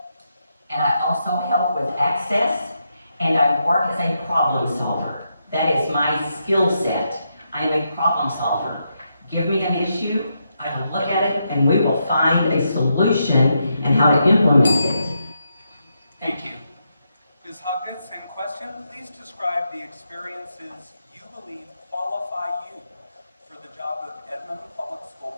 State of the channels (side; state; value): both; inverted; correlation -0.82